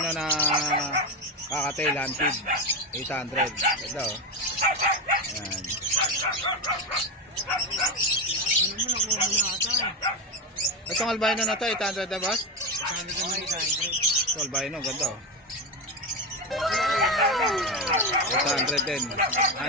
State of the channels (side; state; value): both; normal; correlation 0.14